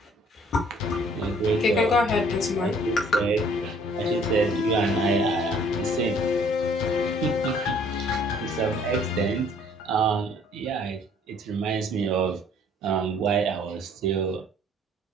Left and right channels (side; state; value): both; normal; correlation 0.58